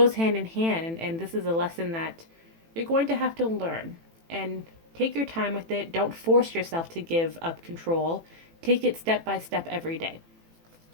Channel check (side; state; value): left; late; 18 ms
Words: hand in hand, and this is a lesson that you're going to have to learn. And take your time with it. Don't force yourself to give up control. Take it step by step every day.